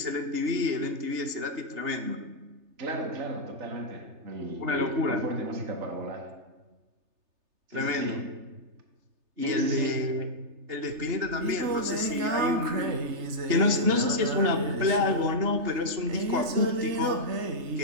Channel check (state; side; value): late; left; 3.3 ms